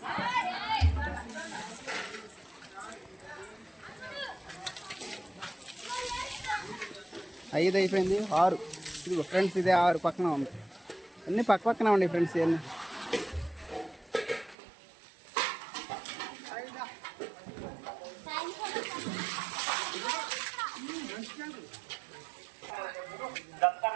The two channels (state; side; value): drops out; left; at 14.6 s